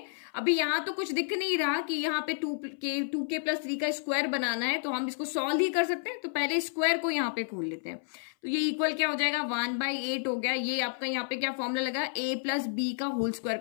अभी यहाँ तो कुछ दिख नहीं रहा कि यहाँ पे 2k+3 का स्क्वायर बनाना है, तो हम इसको सॉल्व ही कर सकते हैं। तो पहले स्क्वायर को यहाँ पे खोल लेते हैं। तो ये इक्वल क्या हो जाएगा, 1/8 हो गया। ये आपका यहाँ पे क्या फॉर्मूला लगा, a+b का होल स्क्वायर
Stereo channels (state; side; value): silent; right; 57 dB below the other